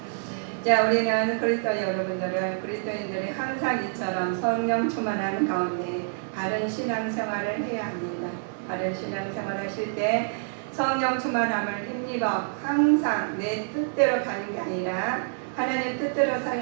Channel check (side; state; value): left; silent; digital silence